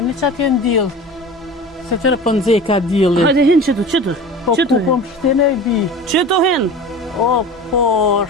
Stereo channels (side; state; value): both; normal; correlation 0.35